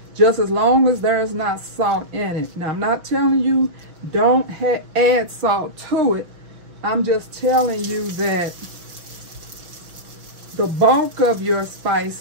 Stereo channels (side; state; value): left; late; 6.0 ms